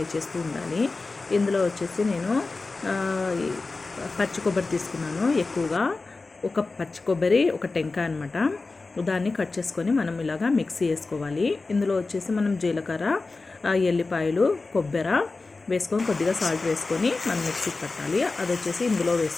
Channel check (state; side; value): quieter; right; 3.7 dB